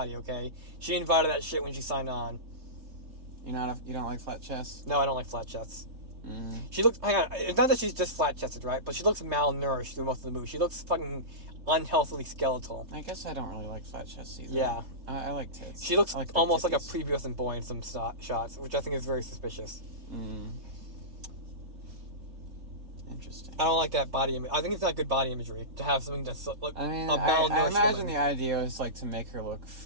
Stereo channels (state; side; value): late; left; 3.8 ms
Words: okay? She invited that shit when she signed on. You don't like flat chests? No, I don't like flat chests. She looks. Hang on, it's not that she's just flat chested, right? But she looks malnourished through most of the movie. She looks fucking unhealthily skeletal. I guess I don't really like flat chests either. Yeah, I like tits. She looks like almost like a titties. prepubescent boy in some shots, which I think is very suspicious. Interesting. I don't like that body image. I think it's not good body imagery to have something that's like I mean, a malnourished I imagine woman. the idea is like to make her look